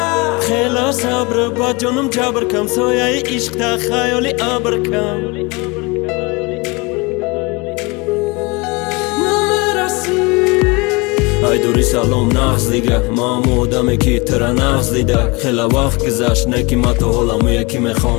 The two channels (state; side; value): quieter; right; 26.9 dB